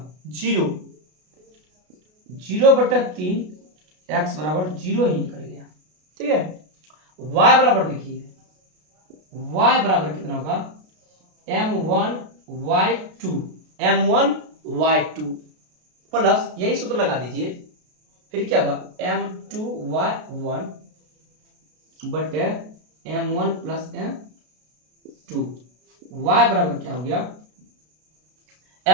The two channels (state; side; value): late; left; 33 ms